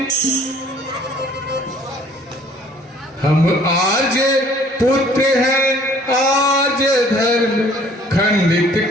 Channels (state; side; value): normal; both; correlation 0.56